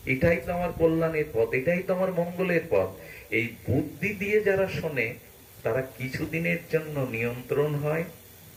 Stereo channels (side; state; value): both; identical; correlation 1.00